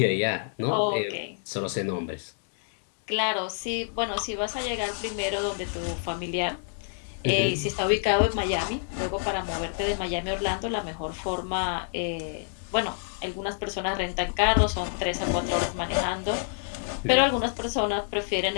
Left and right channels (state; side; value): silent; right; digital silence